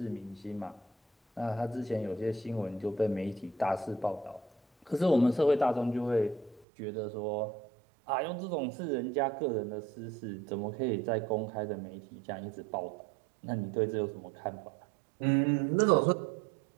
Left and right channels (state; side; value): drops out; left; at 6.7 s